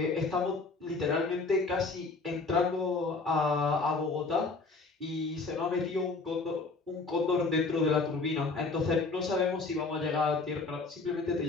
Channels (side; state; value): right; quieter; 3.9 dB